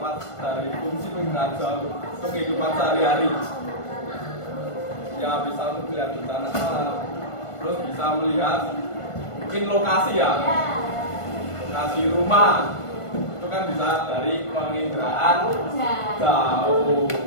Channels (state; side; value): late; right; 1.5 ms